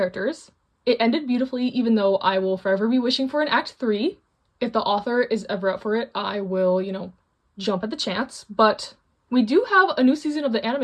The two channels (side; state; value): both; identical; correlation 1.00